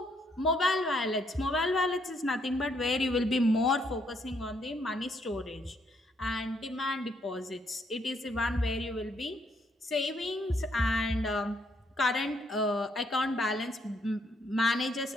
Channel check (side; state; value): both; normal; correlation 0.72